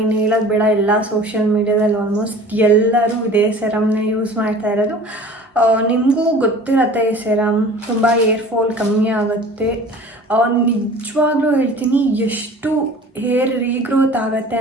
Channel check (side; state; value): both; normal; correlation 0.43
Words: ಹೇಳೋದು ಬೇಡ. ಎಲ್ಲ ಸೋಷಿಯಲ್ ಮೀಡ್ಯಾದಲ್ಲಿ ಆಲ್ಮೋಸ್ಟ್ ಎಲ್ಲರೂ ಇದೇ ಸೆರಮ್ನೇ ಯೂಸ್ ಮಾಡ್ತಾ ಇರೋದು. ನಿಮಗೂ ಗೊತ್ತಿರತ್ತೆ, ಈ ಸೆರಮ್ ತುಂಬ ಏರ್ ಫಾಲ್ ಕಮ್ಮಿ ಆಗುತ್ತೆ. ನಿಜವಾಗ್ಲೂ ಹೇಳ್ತೀನಿ, ಎಷ್ಟು ಹೇರ್ ರೀಗ್ರೋತ್ ಆಗುತ್ತೆ